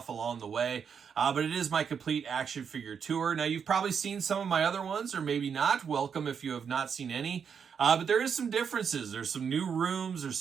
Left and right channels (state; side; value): quieter; left; 6.9 dB